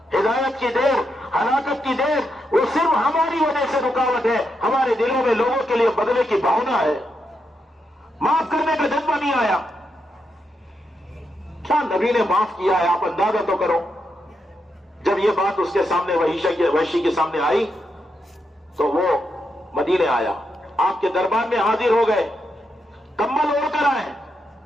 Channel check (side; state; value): both; normal; correlation 0.83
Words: ہدایت کی دیر، ہلاکت کی دیر، وہ صرف ہماری وجہ سے رکاوٹ ہے۔ ہمارے دلوں میں لوگوں کے لیے بدلے کی بھاونا ہے، معاف کرنے کا جذبہ نہیں آیا۔ کیا نبی نے معاف کیا ہے؟ آپ اندازہ تو کرو۔ جب یہ بات اس کے سامنے وحشی کے سامنے آئی تو وہ مدینے آیا، آپ کے دربار میں حاضر ہو گئے، کمبل اوڑھ کر آئے۔